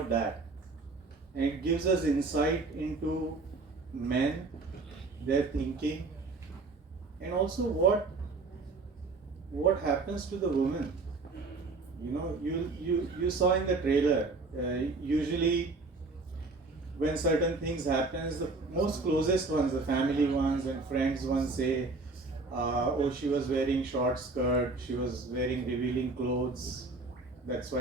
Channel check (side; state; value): left; quieter; 3.7 dB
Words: that, and it gives us insight into men, their thinking, and also what happens to the woman. You saw in the trailer. Usually, when certain things happens, the most closest ones, the family ones and friends ones say, "Oh, she was wearing short skirt. She was wearing revealing clothes. That's